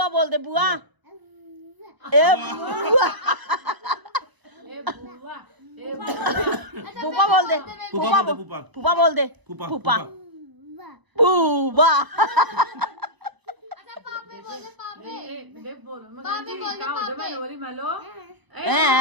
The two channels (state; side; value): late; left; 1.0 ms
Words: बोल दे, बुआ। ए बुआ। फूफा बोल दे, फूफा बोल, फूफा बोल दे, फूफा फूफा।